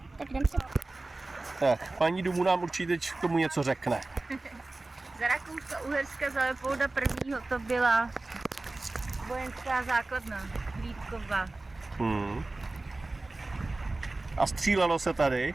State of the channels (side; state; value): left; quieter; 3.1 dB